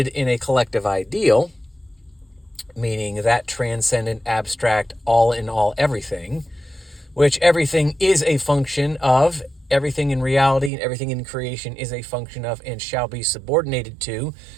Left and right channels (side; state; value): left; drops out; at 10.7 s